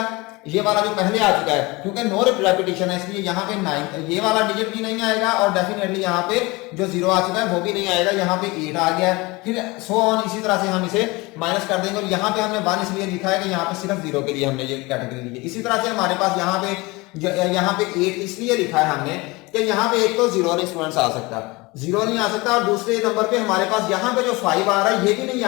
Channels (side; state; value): right; quieter; 23.7 dB